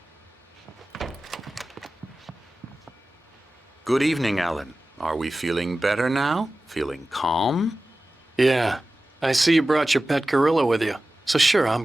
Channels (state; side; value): normal; both; correlation 0.96